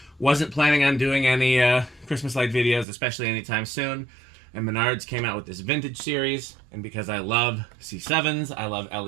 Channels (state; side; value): drops out; left; at 2.9 s